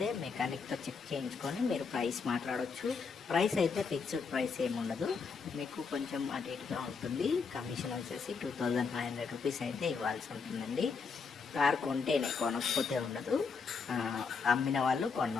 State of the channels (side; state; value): right; quieter; 5.3 dB